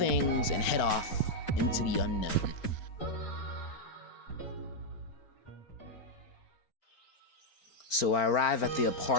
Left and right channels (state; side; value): late; right; 4.4 ms